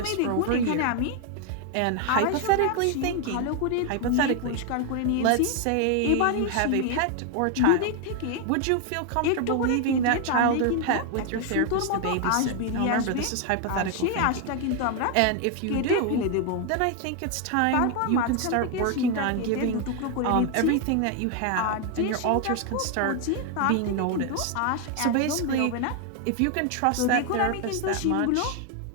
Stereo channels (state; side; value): different; both; correlation 0.01